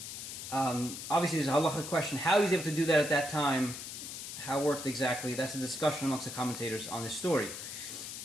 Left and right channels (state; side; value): noise; left; hiss, 8 dB below the sound